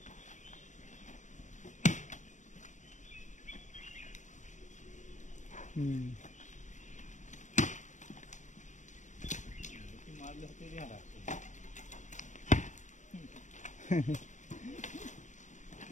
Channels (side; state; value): right; late; 0.35 ms